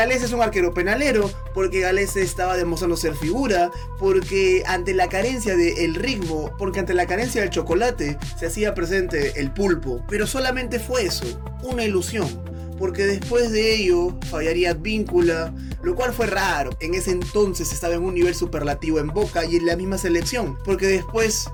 es un arquero penalero, porque Galese estaba demostrando ser figura, porque ante la carencia del ritmo, porque ante la carencia del chocolate, se hacía presente el pulpo. Pero solamente fue eso, una ilusión. Porque después de ello fallaría Advíncula, lo cual fue raro. En ese entonces estaba en un nivel superlativo en Boca y en la misma selección. Porque después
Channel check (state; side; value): identical; both; correlation 1.00